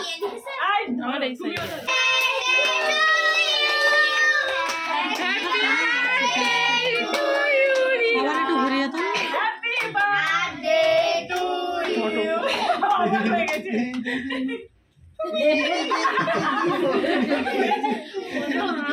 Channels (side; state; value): both; identical; correlation 1.00